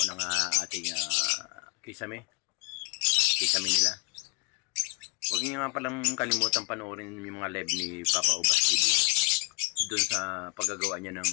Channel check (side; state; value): right; quieter; 32.3 dB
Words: ng ating kisame nila. Huwag niyo nga palang kalimutan panoorin yung mga live ni Papa Ubas TV doon sa paggagawa niya ng